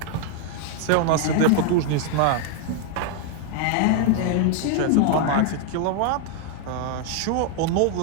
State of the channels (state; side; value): different; both; correlation 0.00